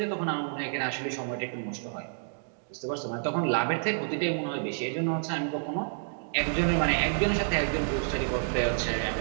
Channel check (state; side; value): silent; left; digital silence